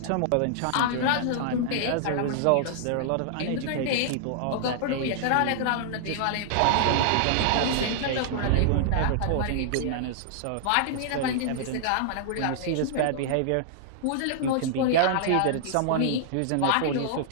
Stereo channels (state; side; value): different; both; correlation -0.01